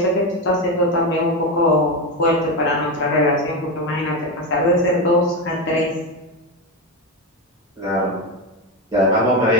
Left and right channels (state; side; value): normal; both; correlation 0.14